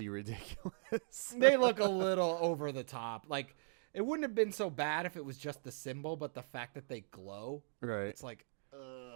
ridiculous. They look a little over the top. Like. It wouldn't have been so bad if it was just the symbol, but the fact that they glow, it's like,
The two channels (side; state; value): left; silent; digital silence